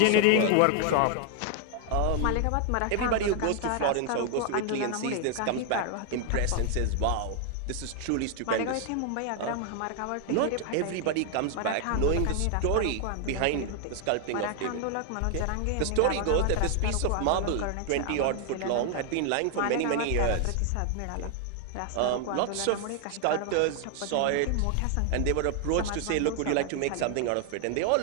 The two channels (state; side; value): different; both; correlation 0.00